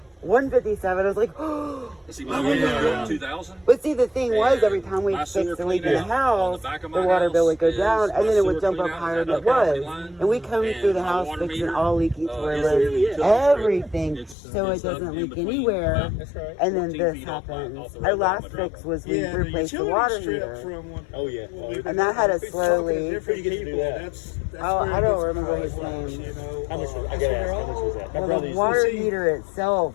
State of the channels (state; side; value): drops out; right; at 14.4 s